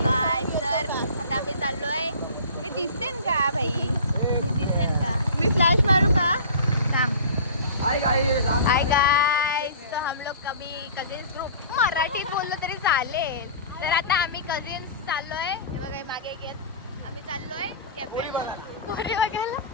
काय सर आता आम्ही चाललोय. मी दिसेन का भाई? मी दिसेन का? मी फ्लॅश मारू का? थांब. हाय गाइस तो हम लोग कभी कजिन्स ग्रुप मराठीत बोललो तरी चालेल. तर आता आम्ही कजिन्स चाललोय. हे बघा मागे घेत आम्ही चाललोय कॅफेला. पोरी बघायला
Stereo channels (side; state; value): both; inverted; correlation -0.40